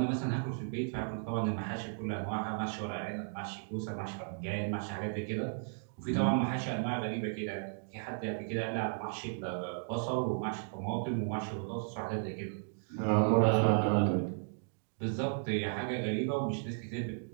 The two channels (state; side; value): silent; left; digital silence